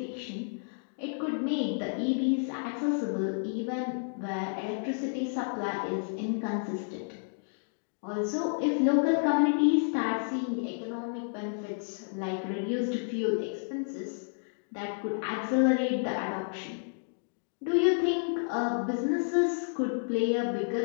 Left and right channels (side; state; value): right; silent; digital silence